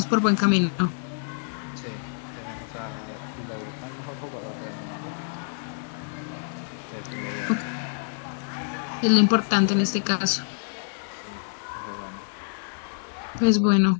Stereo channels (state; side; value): silent; right; digital silence